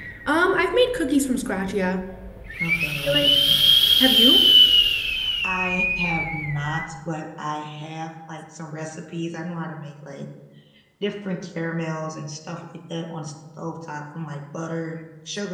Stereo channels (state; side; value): identical; both; correlation 1.00